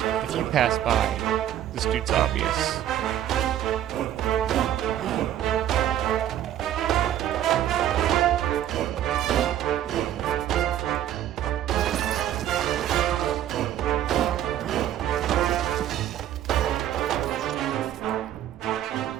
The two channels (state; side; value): quieter; left; 11.6 dB